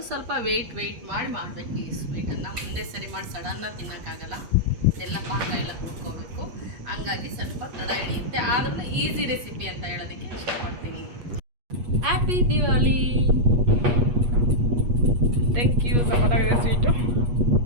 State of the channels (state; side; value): late; left; 8.4 ms